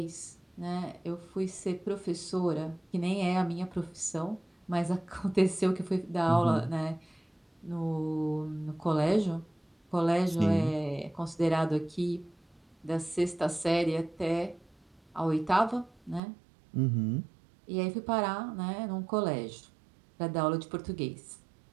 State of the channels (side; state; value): left; drops out; at 16.2 s